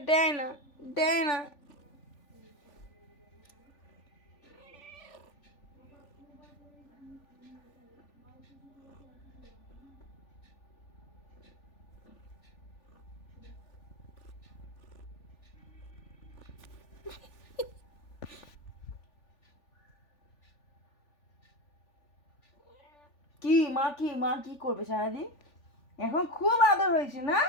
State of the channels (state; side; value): late; right; 3.4 ms